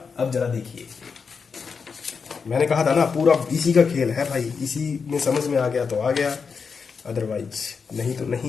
अब जरा देखिए, मैंने कहा था ना पूरा इसी का खेल है भाई, इसी में समझ में आ गया तो आ गया, अदरवाइज नहीं तो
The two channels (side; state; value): right; quieter; 5.6 dB